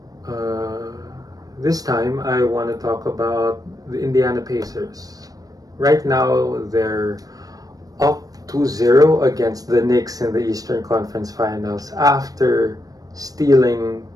Uh, this time I want to talk about the Indiana Pacers. Right now they're up 2-0 against the Knicks in the Eastern Conference Finals after stealing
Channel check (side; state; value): left; late; 0.18 ms